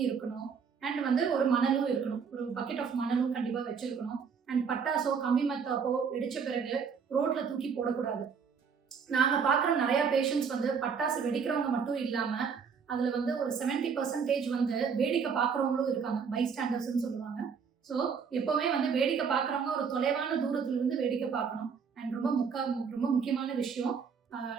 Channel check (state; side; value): quieter; left; 6.2 dB